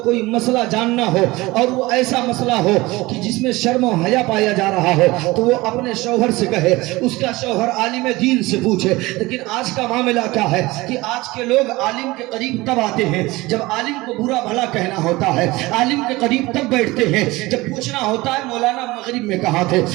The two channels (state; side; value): quieter; left; 20.7 dB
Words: کوئی مسئلہ جاننا ہو اور وہ ایسا مسئلہ ہو کہ جس میں شرم و حیا پایا جا رہا ہو تو وہ اپنے شوہر سے کہے, اس کا شوہر عالم دین سے پوچھے. لیکن آج کا معاملہ کیا ہے کہ آج کے لوگ عالم کے قریب تب آتے ہیں جب عالم کو برا بھلا کہنا ہوتا ہے, عالم کے قریب تب بیٹھتے ہیں جب پوچھنا ہوتا ہے مولانا مغرب میں کہاں تھے,